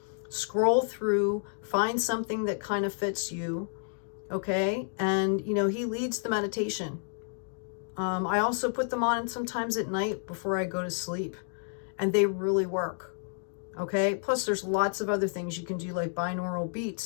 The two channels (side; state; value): right; silent; 58 dB below the other